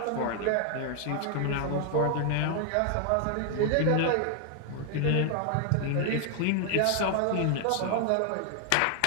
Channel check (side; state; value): both; different; correlation 0.00